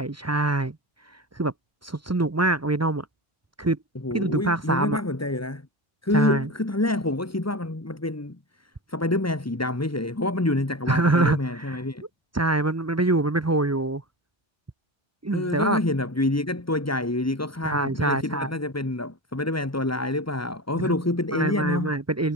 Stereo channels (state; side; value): normal; both; correlation 0.26